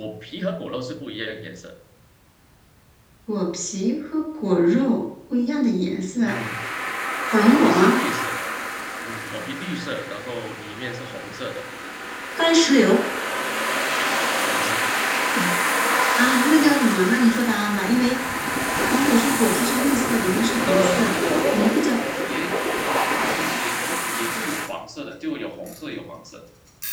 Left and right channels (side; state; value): both; identical; correlation 1.00